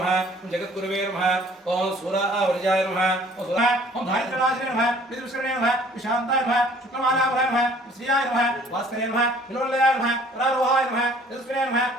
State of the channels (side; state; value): both; normal; correlation 0.55